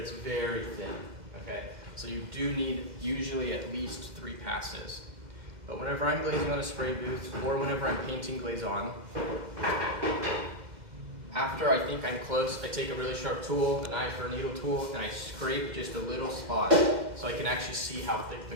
very thin, okay? So you do need usually at least 3 passes. But whenever I'm glazing on a spray booth, or whenever I'm painting glaze on, after I think I'm close, I take a really sharp tool, a knife or a needle tool, and I scrape just a little spot so I can actually see how thick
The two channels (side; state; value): left; late; 2.1 ms